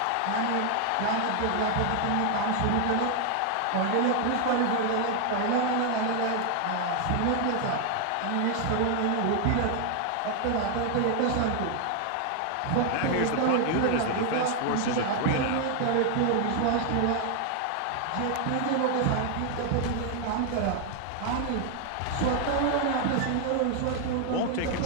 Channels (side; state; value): both; different; correlation 0.00